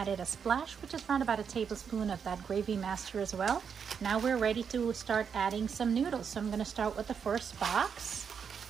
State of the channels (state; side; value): quieter; left; 6.9 dB